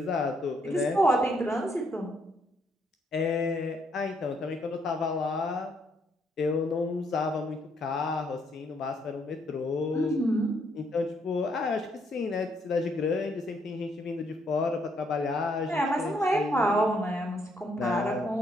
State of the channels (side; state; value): both; normal; correlation 0.72